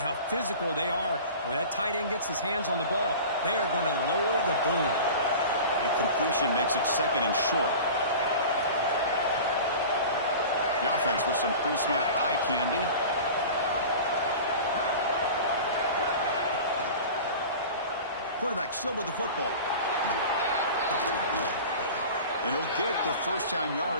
physical they are. When that tight end gets his hands on the ball, they are going to lower the boom. And completion makes it 2nd and short. The offense with some pre-snap eye candy. Quarterback still with the football. And he'll get the 1st down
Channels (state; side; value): inverted; both; correlation -0.37